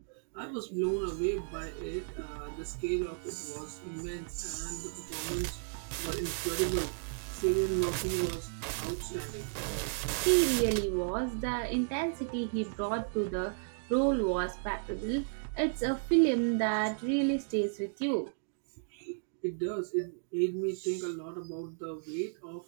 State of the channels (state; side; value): silent; left; digital silence